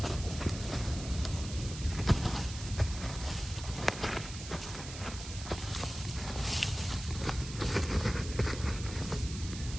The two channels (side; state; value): right; noise; hiss, 11 dB below the sound